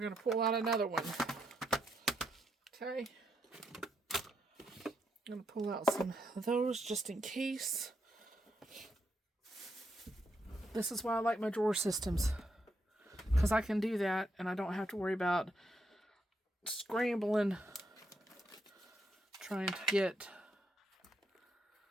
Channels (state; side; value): normal; both; correlation 0.79